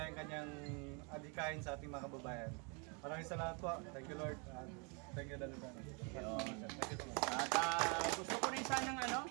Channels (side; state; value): left; quieter; 34.2 dB